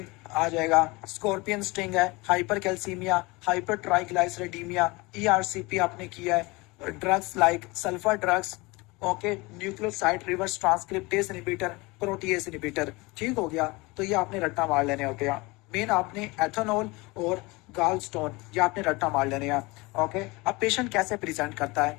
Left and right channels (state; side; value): quieter; right; 24.1 dB